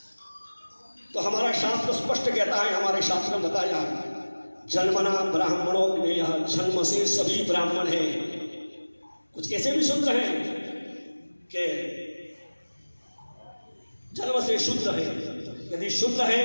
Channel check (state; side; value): inverted; both; correlation -1.00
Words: तो हमारा शास्त्र स्पष्ट कहता है, हमारे शास्त्र में बताया जन्मना ब्राह्मणों ने, यह जन्म से सभी ब्राह्मण हैं। कुछ ऐसे भी शूद्र हैं कि जन्म से शूद्र है। यदि शूद्र है